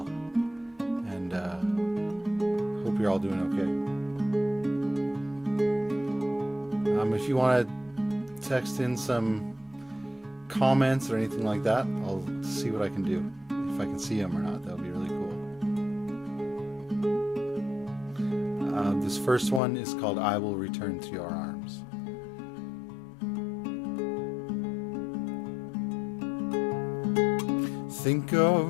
and hope you're all doing okay. If you want to text in some comments or anything like that, I'll see what I can do. If I can see them or not, that would be really cool. This first one is called I Will Return to Your Arms. Think of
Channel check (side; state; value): right; drops out; at 19.6 s